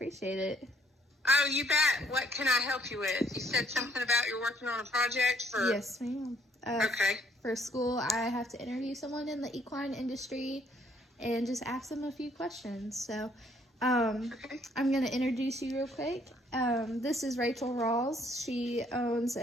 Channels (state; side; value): normal; both; correlation 0.66